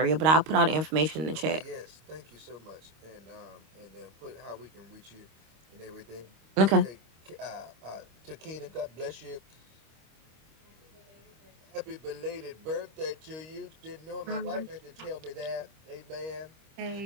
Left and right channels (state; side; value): late; left; 25 ms